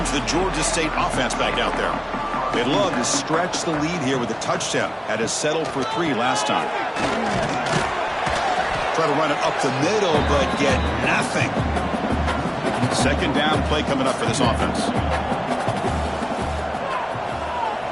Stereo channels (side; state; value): both; identical; correlation 1.00